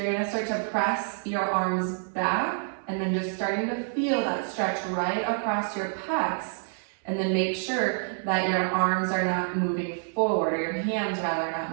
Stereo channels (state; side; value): silent; left; 60 dB below the other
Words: going to start to press your arms back, and then just starting to feel that stretch right across your pecs, and then make sure that your arms are not moving forward, or your hands rather are not